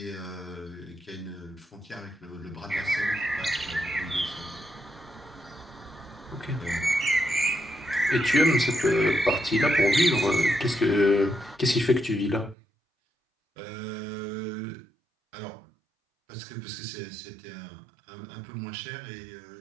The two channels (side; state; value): left; drops out; at 12.6 s